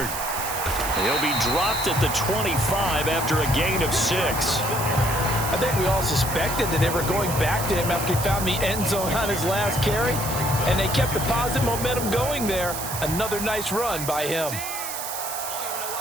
He'll be dropped at the 25 after a gain of 6. I think we all suspected that they were going back to him after he found the end zone on his last carry. And they kept the positive momentum going there. Another nice run by him.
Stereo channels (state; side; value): noise; right; hiss, 6 dB below the sound